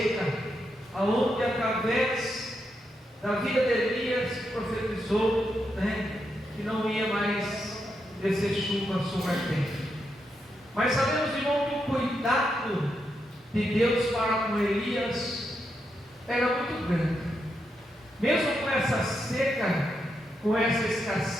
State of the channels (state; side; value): normal; both; correlation 0.83